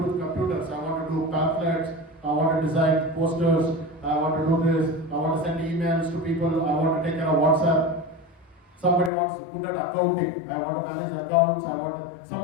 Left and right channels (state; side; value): drops out; right; at 9.1 s